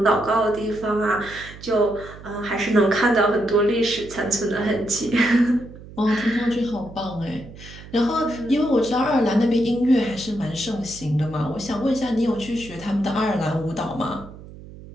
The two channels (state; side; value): noise; right; hum, 17 dB below the sound